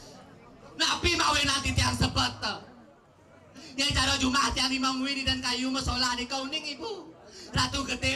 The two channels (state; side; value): identical; both; correlation 1.00